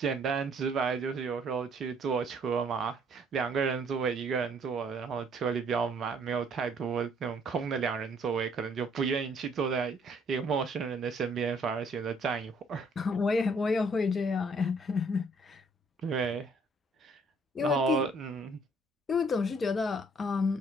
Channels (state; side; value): normal; both; correlation 0.63